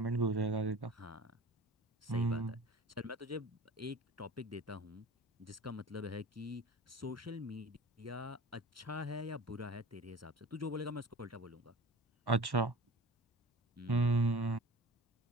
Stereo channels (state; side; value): normal; both; correlation 0.40